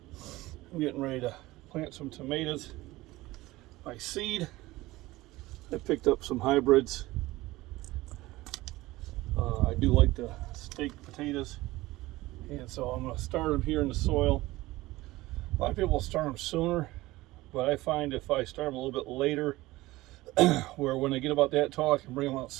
I'm getting ready to plant some tomatoes by seed. I picked up some hybrids. I do like the steak potatoes, and so I'm going to start them here in the soil. A lot of people start them sooner, but I find if I start them a little bit later, where when they get about that tall, I can bring them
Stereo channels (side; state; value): left; quieter; 18.7 dB